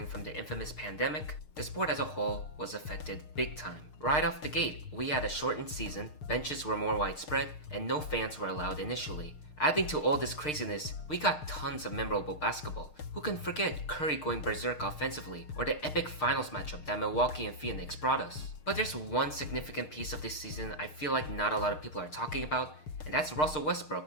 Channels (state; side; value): late; right; 6.6 ms